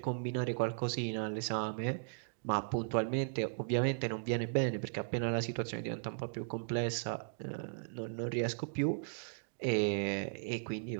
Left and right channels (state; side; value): silent; left; digital silence